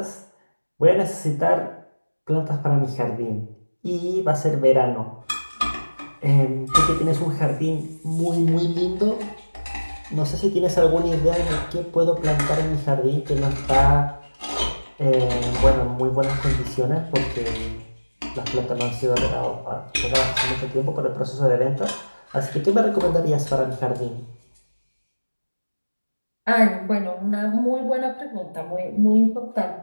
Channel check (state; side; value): inverted; both; correlation -1.00